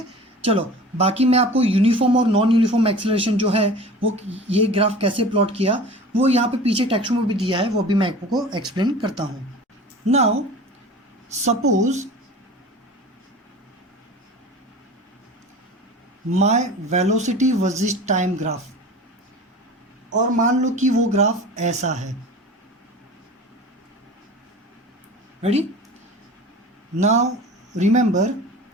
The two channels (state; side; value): normal; both; correlation 0.38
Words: चलो बाकी मैं आपको यूनिफॉर्म और नॉन यूनिफॉर्म एक्सेलरेशन जो है वो ये ग्राफ कैसे प्लॉट किया वो यहाँ पे पीछे टेक्स्ट में भी दिया है, वो भी मैं आपको एक्सप्लेन करता हूँ। Now suppose my velocity versus time graph, और मान लो कि वो ग्राफ ऐसा है। Ready, now remember,